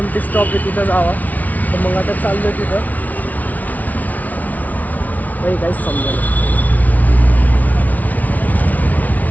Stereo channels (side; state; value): right; late; 0.074 ms